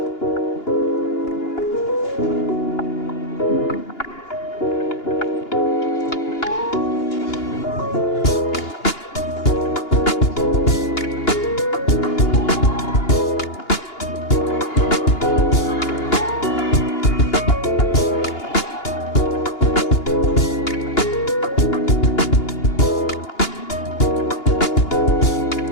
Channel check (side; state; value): right; late; 2.9 ms